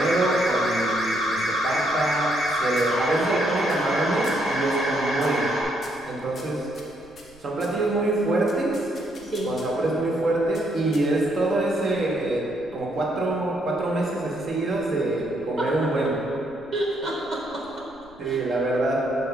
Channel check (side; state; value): right; noise; rumble, 27 dB below the sound